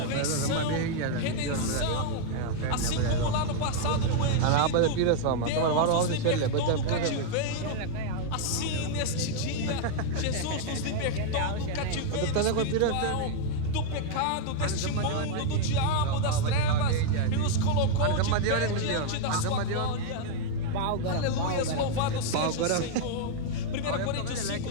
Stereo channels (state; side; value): different; both; correlation 0.00